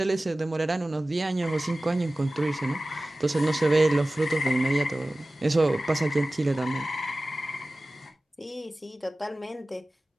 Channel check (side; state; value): both; normal; correlation 0.97